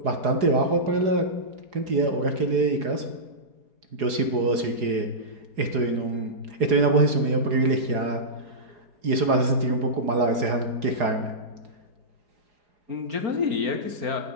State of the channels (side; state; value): left; late; 4.8 ms